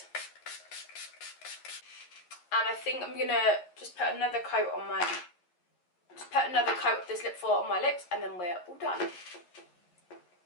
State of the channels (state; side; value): late; right; 11 ms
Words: and I think I'm gonna just put another coat on of this lip foil on my lips, and then we're all done.